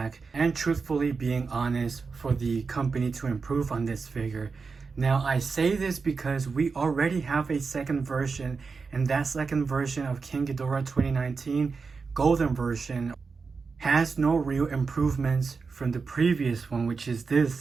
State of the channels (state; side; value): quieter; left; 4.8 dB